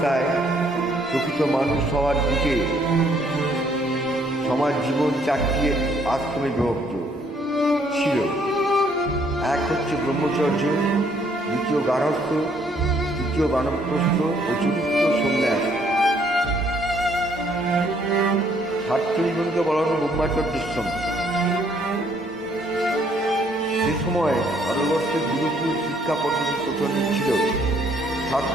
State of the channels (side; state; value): both; normal; correlation 0.66